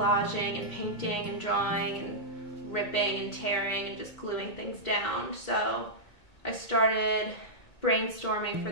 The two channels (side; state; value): right; late; 2.1 ms